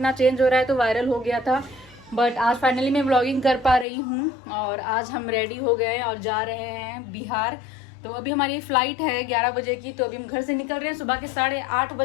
चेंज हो रहा है तो वायरल हो गया था, बट आज फाइनली मैं व्लॉगिंग कर पा रही हूँ। और आज हम रेडी हो गए और जा रहे हैं बिहार। तो अभी हमारी फ्लाइट है 11 बजे की, तो अभी हम घर से निकल रहे हैं। सुबह के 8:30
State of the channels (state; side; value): drops out; right; at 3.9 s